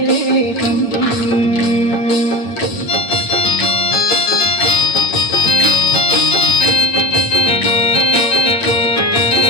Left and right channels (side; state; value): right; late; 8.9 ms